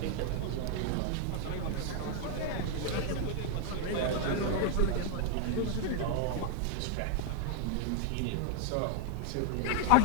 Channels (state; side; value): different; both; correlation 0.00